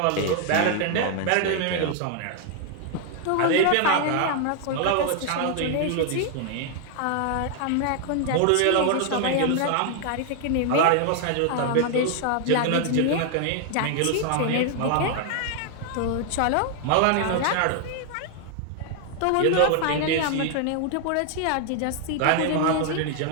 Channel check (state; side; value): different; both; correlation 0.00